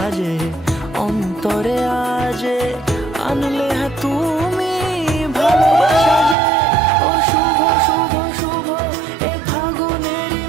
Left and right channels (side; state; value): left; drops out; at 6.4 s